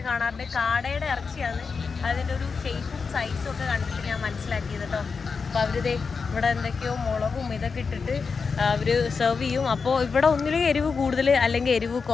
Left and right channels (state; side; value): quieter; right; 5.1 dB